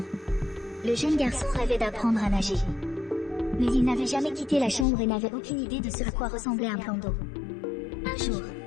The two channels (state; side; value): drops out; right; at 4.9 s